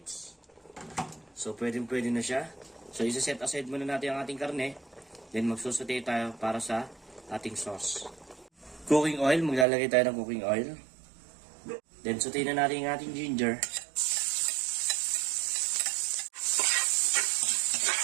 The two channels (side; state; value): left; drops out; at 9.7 s